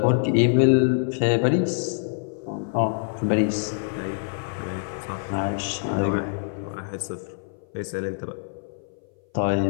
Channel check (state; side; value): silent; right; 58 dB below the other